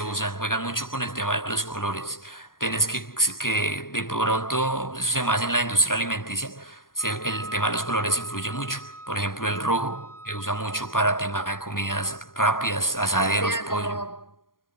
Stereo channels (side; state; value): right; late; 0.91 ms